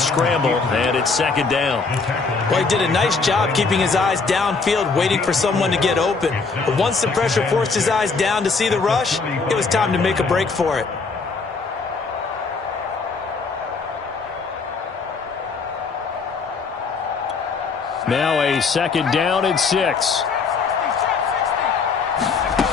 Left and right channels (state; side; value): quieter; right; 4.6 dB